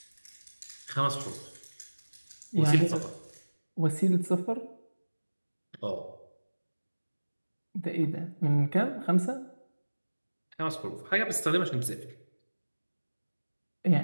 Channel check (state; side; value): inverted; both; correlation -1.00